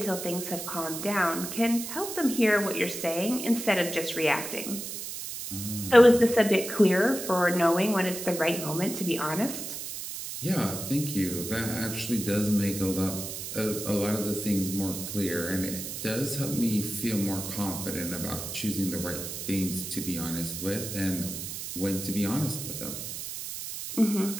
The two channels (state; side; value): noise; right; hiss, 7 dB below the sound